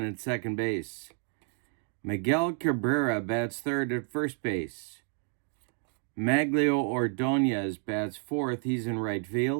at second base. Miguel Cabrera bats third at first base. Maglio Ordonez bats fourth. He's in right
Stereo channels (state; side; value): quieter; left; 39.1 dB